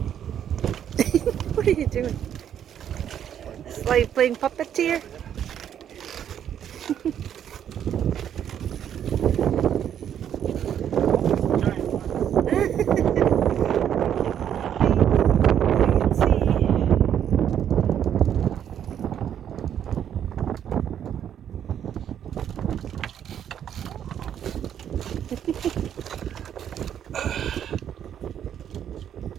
What are you doing? It's like playing puppeteer?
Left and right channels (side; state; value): left; quieter; 9.5 dB